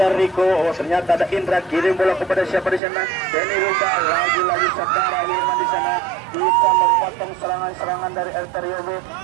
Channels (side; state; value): left; drops out; at 2.8 s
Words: Rico, oh ternyata ada Indra kirim bola kepada siapa di sana? Denny Ruba, lagi-lagi saudara Hilman di sana bisa memotong serangan-serangan dari Arterio B.